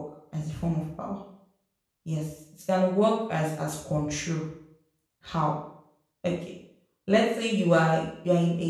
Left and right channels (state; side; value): identical; both; correlation 1.00